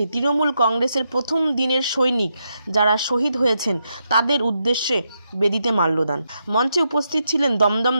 তৃণমূল কংগ্রেসের প্রথম দিনের সৈনিক যারা শহীদ হয়েছেন তাদের উদ্দেশ্যে বেদিতে মাল্যদান। মঞ্চে উপস্থিত ছিলেন দমদম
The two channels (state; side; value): inverted; both; correlation -0.83